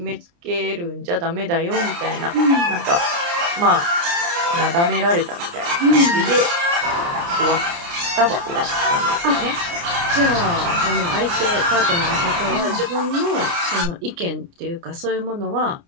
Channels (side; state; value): left; late; 29 ms